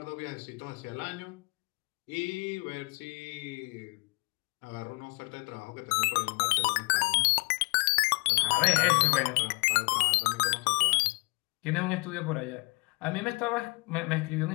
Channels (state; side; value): quieter; right; 28.4 dB